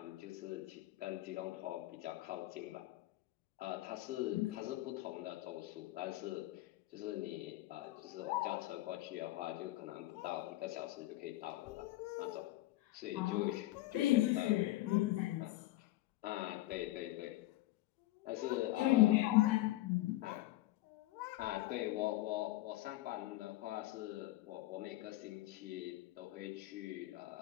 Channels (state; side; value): quieter; right; 17.0 dB